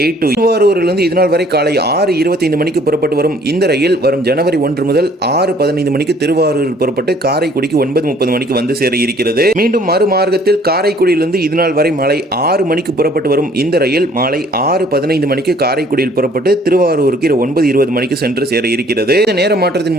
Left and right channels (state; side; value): normal; both; correlation 0.58